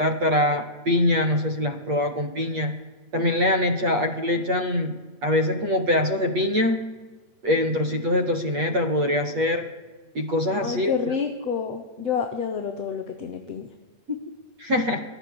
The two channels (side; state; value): left; late; 8.3 ms